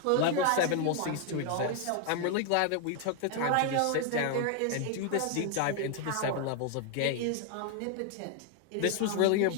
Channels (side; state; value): both; different; correlation 0.00